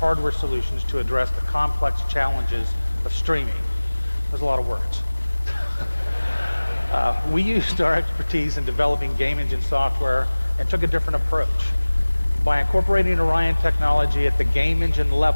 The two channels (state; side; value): inverted; both; correlation -1.00